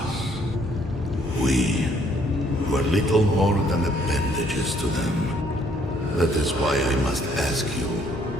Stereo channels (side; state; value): both; normal; correlation 0.65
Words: We were little more than appendages to them. That is why I must ask you